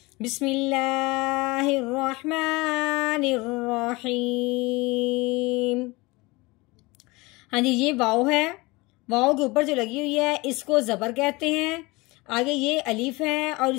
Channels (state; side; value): quieter; right; 23.5 dB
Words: बिस्मिल्लाहिर रहमानिर रहीम। हाँ जी, ये वाव है, वाव के ऊपर जो लगी हुई है इसको जबर कहते हैं। आगे ये अलीफ है और